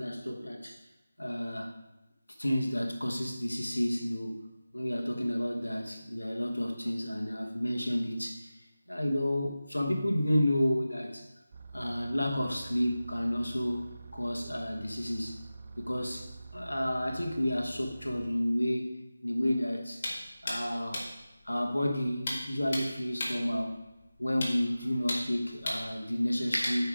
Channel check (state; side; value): inverted; both; correlation -0.96